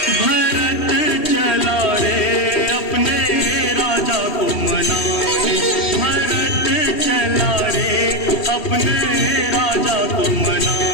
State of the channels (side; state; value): right; late; 2.7 ms